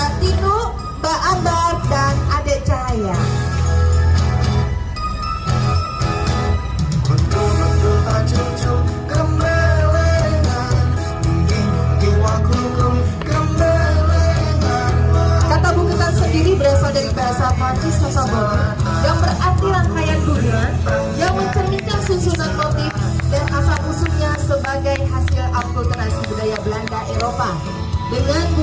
Tinu, Mbak Ambar, dan Adek Cahaya. Kata bungkusan sendiri berasal dari bahasa Prancis Sasamone yang berarti rangkaian bunga yang mencerminkan susunan motif dan asal-usulnya sebagai hasil akulturasi budaya Belanda Eropa dengan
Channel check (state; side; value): identical; both; correlation 1.00